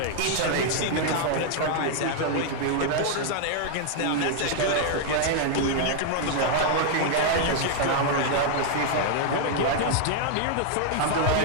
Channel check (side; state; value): both; different; correlation 0.00